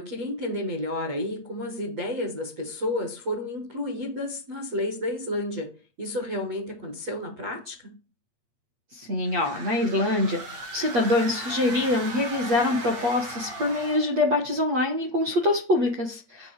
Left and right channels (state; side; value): late; left; 8.5 ms